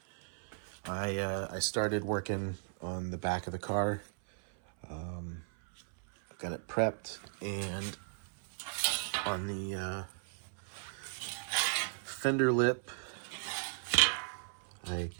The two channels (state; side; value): silent; left; 54 dB below the other